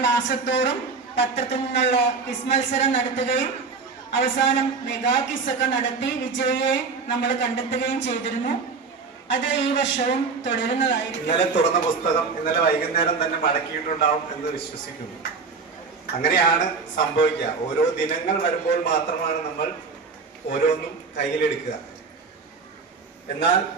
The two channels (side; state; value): left; quieter; 4.7 dB